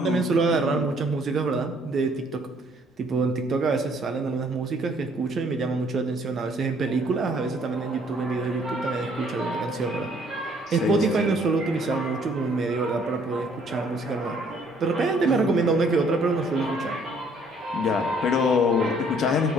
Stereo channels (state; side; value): normal; both; correlation 0.62